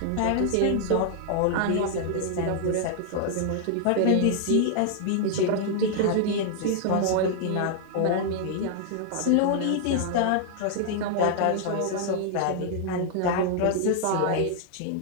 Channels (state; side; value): different; both; correlation -0.01